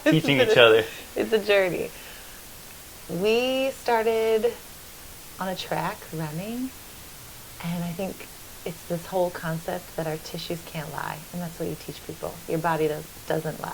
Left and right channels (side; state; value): both; identical; correlation 1.00